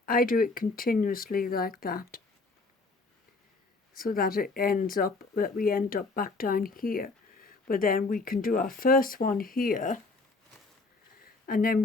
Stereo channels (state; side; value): quieter; right; 3.6 dB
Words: I do it continuously like that, so that we end up back down here. But then we can do our first one here, and then